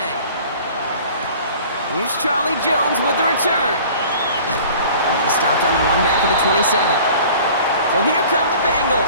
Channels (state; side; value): inverted; both; correlation -0.47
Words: Here's Charlie Jones with the return. He stopped on the run back at the 27. So here come the